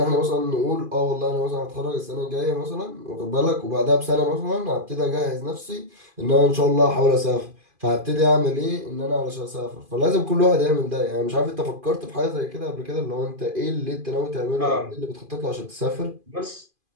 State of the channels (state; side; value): late; left; 2.5 ms